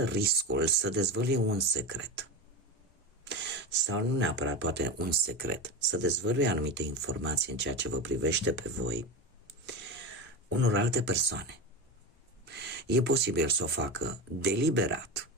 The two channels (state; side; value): normal; both; correlation 0.22